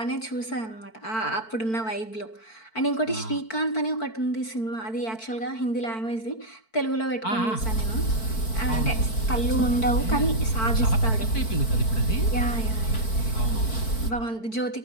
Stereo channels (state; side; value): late; right; 4.5 ms